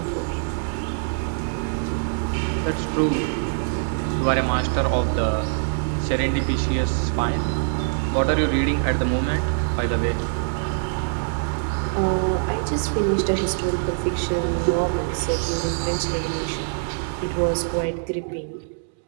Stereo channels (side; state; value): left; silent; digital silence